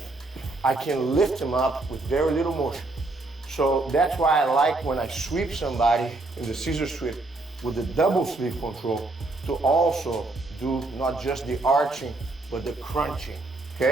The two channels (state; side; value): quieter; left; 3.1 dB